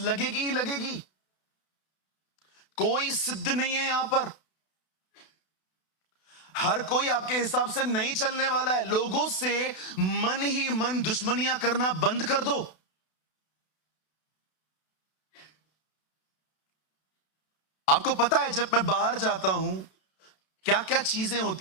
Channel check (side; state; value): right; late; 32 ms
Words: ही लगेगी। कोई सिद्ध नहीं है यहां पर, हर कोई आपके हिसाब से नहीं चलने वाला है। लोगों से मन ही मन दुश्मनियां करना बंद कर दो। आपको पता है जब मैं बाहर जाता हूं क्या क्या चीजें